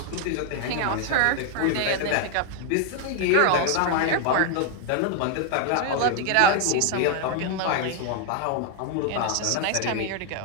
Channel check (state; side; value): different; both; correlation 0.00